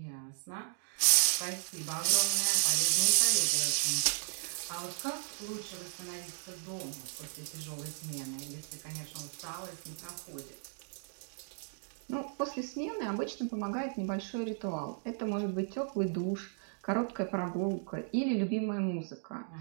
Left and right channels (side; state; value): left; silent; digital silence